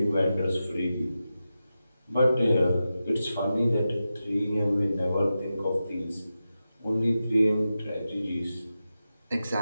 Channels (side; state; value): both; inverted; correlation -0.91